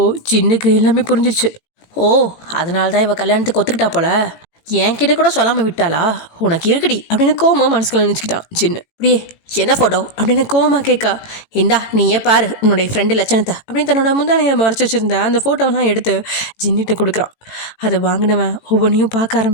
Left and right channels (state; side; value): late; right; 18 ms